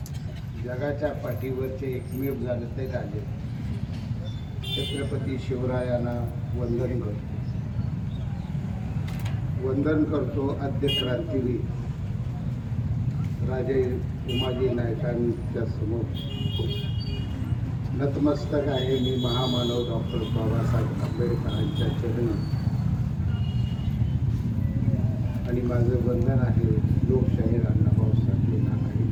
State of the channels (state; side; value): identical; both; correlation 1.00